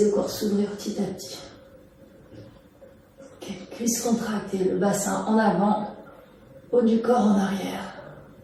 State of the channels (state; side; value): identical; both; correlation 1.00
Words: le corps s'ouvrir petit à petit. Okay. Cuisses contractées, le bassin en avant, haut du corps en arrière.